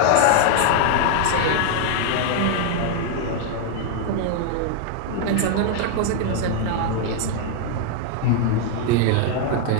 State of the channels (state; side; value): different; both; correlation 0.00